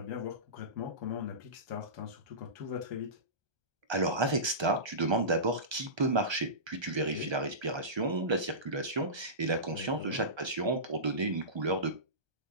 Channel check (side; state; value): left; late; 1.3 ms